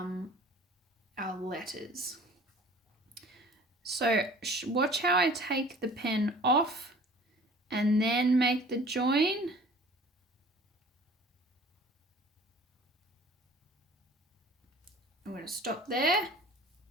letters. So watch how I take the pen off and then make the join. I'm going to stop there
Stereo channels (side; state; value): both; normal; correlation 0.48